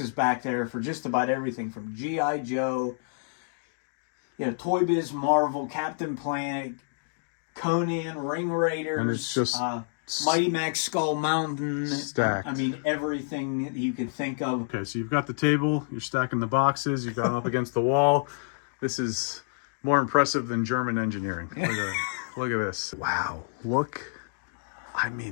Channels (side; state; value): right; silent; digital silence